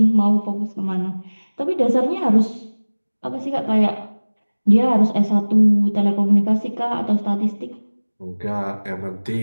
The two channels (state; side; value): inverted; both; correlation -1.00